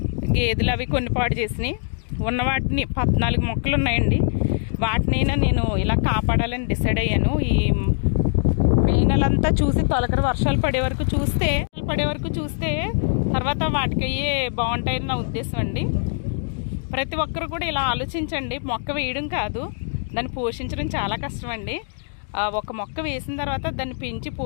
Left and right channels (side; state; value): right; silent; digital silence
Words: గేదెలు అవి కొన్ని పాడు చేసినాయి. ఉన్న వాటిని 14 మొక్కలు ఉన్నాయండి. వాటినైనా నేను ఇలా కాపాడాలని డిసైడ్ అయ్యాను. ఈ మే నెలంతా చూసి తొలకరి వర్షాలు పడే వరకు చూస్తే తర్వాత వాటికి అయ్యే బాగుంటాయని నా ఉద్దేశం అండి. ప్రతి ఒక్కరు కూడా ఇలా ఆలోచించండి. మొక్క వేయడం కాదు, దాన్ని పోషించడం చాలా కష్టం అండి. ఒక మొక్క వేసిన తర్వాత దాన్ని పెంచి